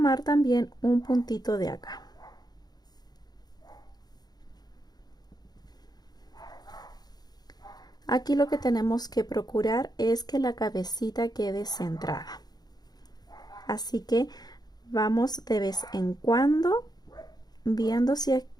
también un puntito de acá. Aquí lo que tenemos que procurar es que la cabecita quede centrada. Así que vamos de vez en cuando viendo si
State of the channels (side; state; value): right; late; 0.19 ms